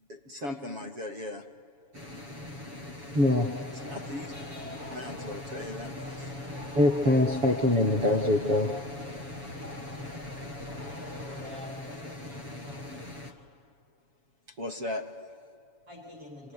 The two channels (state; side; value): late; left; 7.2 ms